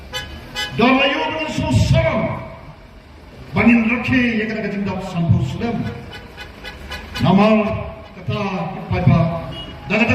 Dan layu dengan susah Bangin rakhi yang kena kejendap sampul sulam Namal kata paipa Dan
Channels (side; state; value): both; identical; correlation 1.00